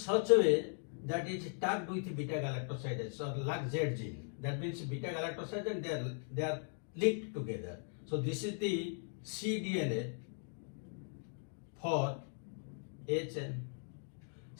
a way that it is tagged with beta galactosidase or LAC-Z gene. That means beta galactosidase and they are linked together. So this is the cDNA for A chain.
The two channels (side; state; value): right; silent; 52 dB below the other